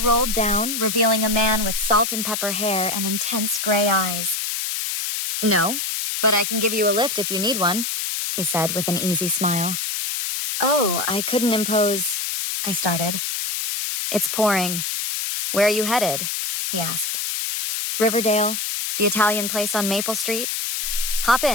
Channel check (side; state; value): left; noise; hiss, 2 dB below the sound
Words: down, revealing a man with salt and pepper hair and intense gray eyes. "No, but I can give you a lift if you need one," he said with an easy smile. "Oh, I couldn't impose," I started. "It's pouring. Where are you headed?" he asked. "Riverdale, the Italian place on Maple Street." "Hop